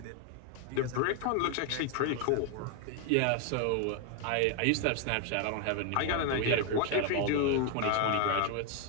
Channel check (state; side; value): different; both; correlation 0.01